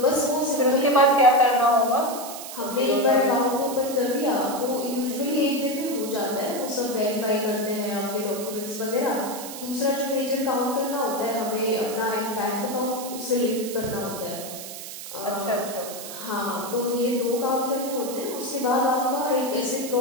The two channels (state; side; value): noise; right; hiss, 10 dB below the sound